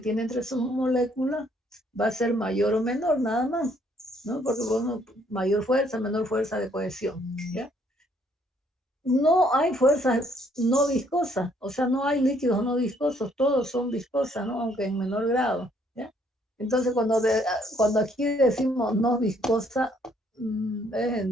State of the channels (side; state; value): both; normal; correlation 0.66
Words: tiene entre sus moléculas va a ser mayor o menor, nada más, ¿no? Porque bueno, mayor fuerza, menor fuerza de cohesión, ¿ya? No hay fuerzas no viscosas, o sea, no hay líquidos no viscosos, todos son viscosas, ¿no? Aunque en menor grado, ¿ya? Entonces, cuando aquí decimos no viscosa, es